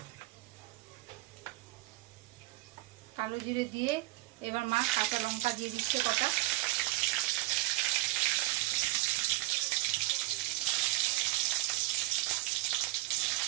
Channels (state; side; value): quieter; left; 19.9 dB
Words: কালো জিরে দিয়ে এবার মা কাঁচা লঙ্কা দিয়ে দিচ্ছে কটা।